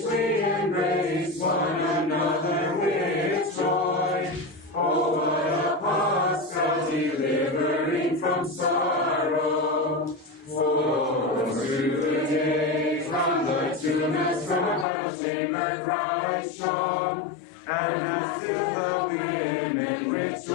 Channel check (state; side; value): drops out; right; at 14.9 s